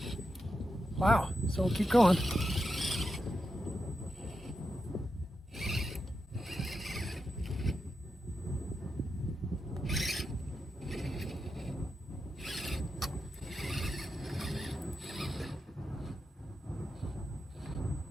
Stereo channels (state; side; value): normal; both; correlation 0.87